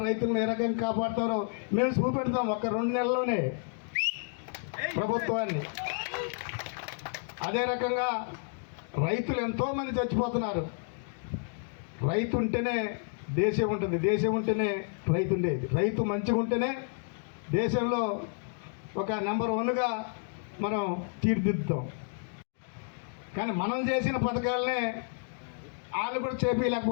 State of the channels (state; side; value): silent; right; 57 dB below the other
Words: రైతులను ఏ రకంగా కాపాడుతారో మేము చూపెడతాం. ఒక 2 నెలల్లోనే ప్రభుత్వాన్ని. అదే రకంగా రైతులు ఎంతోమంది చచ్చిపోతున్నారు. రైతు ఉంటేనే దేశం ఉంటుంది, దేశం ఉంటేనే రైతు ఉండేది. రైతు మంచిగా ఉంటేనే దేశంలో ఒక నెంబర్ 1గా మనం తీర్చిదిద్దుతాం. కానీ మనం చేసిన పథకాలనే వాళ్ళు కూడా